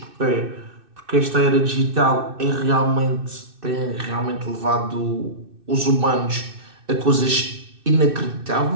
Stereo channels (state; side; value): late; left; 2.6 ms